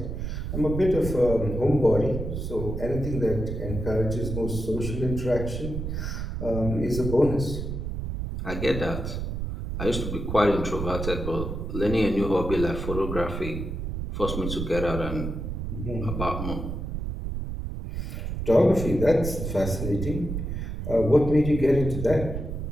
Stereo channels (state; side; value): noise; right; rumble, 4 dB below the sound